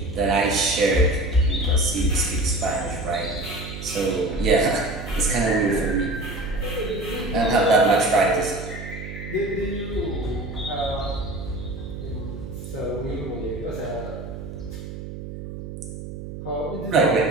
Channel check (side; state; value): right; noise; hum, 10 dB below the sound